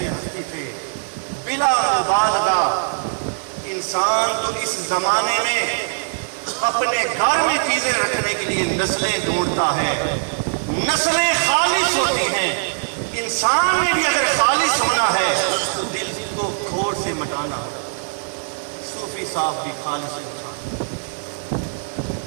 ہستی تھے. بلا مبالغہ انسان تو اس زمانے میں اپنے گھر میں چیزیں رکھنے کے لیے نسلیں ڈھونڈتا ہے. نسلیں خالص ہوتی ہیں. انسان میں بھی اگر خالص ہونا ہے تو دل کو کھوٹ سے مٹانا. صوفی صاحب بھی خالص انسان،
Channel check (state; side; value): silent; left; digital silence